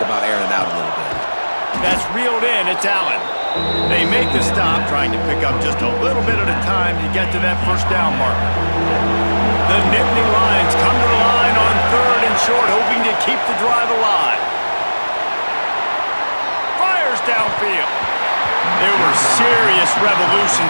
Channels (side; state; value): both; inverted; correlation -1.00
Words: airing it out a little bit. That's reeled in. It's Allen. They make the stop, trying to pick up just a little bit at a time to get to that 1st down marker. The Nittany Lions come to the line on 3rd and short, hoping to keep the drive alive. Fires downfield. There were serious